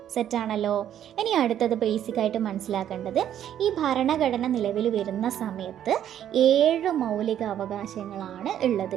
സെറ്റാണല്ലോ? ഇനി അടുത്തത് ബേസിക്കായിട്ട് മനസ്സിലാക്കേണ്ടത്, ഈ ഭരണഘടന നിലവിൽ വരുന്ന സമയത്ത് 7 മൗലിക അവകാശങ്ങളാണ് ഉള്ളത്.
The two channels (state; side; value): quieter; left; 10.6 dB